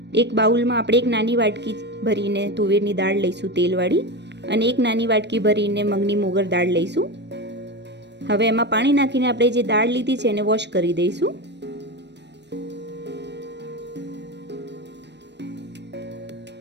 એક બાઉલમાં આપણે એક નાની વાટકી ભરીને તુવેરની દાળ લઈશું તેલવાળી, અને એક નાની વાટકી ભરીને મગની મોગર દાળ લઈશું। હવે એમાં પાણી નાખીને આપણે જે દાળ લીધી છે એને વોશ કરી દઈશું।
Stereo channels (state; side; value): late; left; 0.50 ms